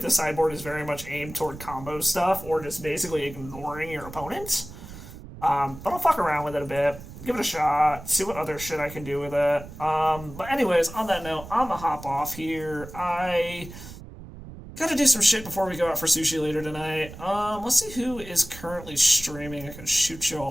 sideboard is very much aimed toward combo stuff, or just basically ignoring your opponent. But I'll fuck around with it a bit, give it a shot, see what other shit I can do with it. But anyways, on that note, I'm gonna hop off here. I gotta do some shit before we go out for sushi later tonight. Let's see who is currently streaming I can shoot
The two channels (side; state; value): right; noise; rumble, 15 dB below the sound